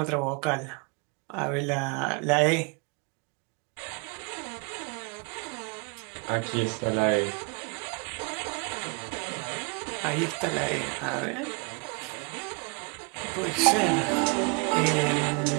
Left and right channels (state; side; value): quieter; left; 33.8 dB